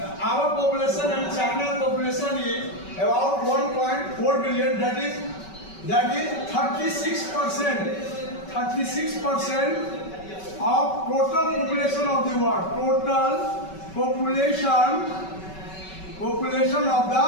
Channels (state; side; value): late; right; 5.3 ms